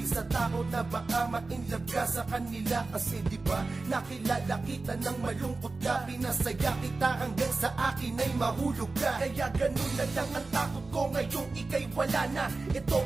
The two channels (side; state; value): left; quieter; 3.7 dB